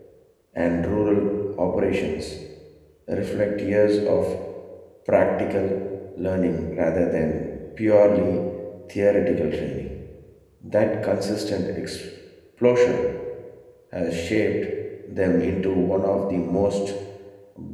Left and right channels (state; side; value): identical; both; correlation 1.00